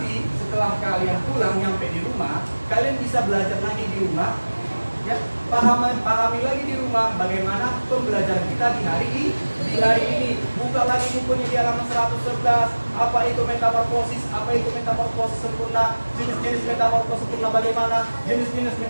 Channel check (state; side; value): inverted; both; correlation -1.00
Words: setelah kalian pulang nyampe di rumah, kalian bisa belajar lagi di rumah. Ya, pahami lagi di rumah bagaimana pembelajaran kita di hari ini. Buka lagi bukunya di halaman 111. Apa itu metamorfosis? Apa itu metamorfosis sempurna? Jenis-jenis metamorfosis sempurna bagaimana? Jenis-jenis